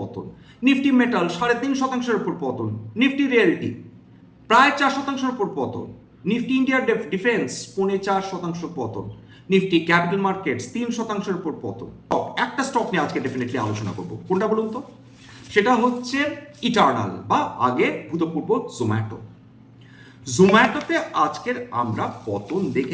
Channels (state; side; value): identical; both; correlation 1.00